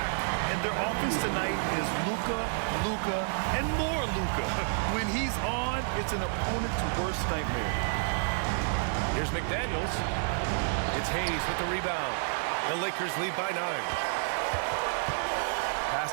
And their offense tonight is Luka, Luka, and more Luka. When he's on, it's an opponent's worst nightmare. Here's McDaniels. It's Hayes with the rebound. The Lakers lead by 9. Pass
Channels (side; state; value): left; silent; digital silence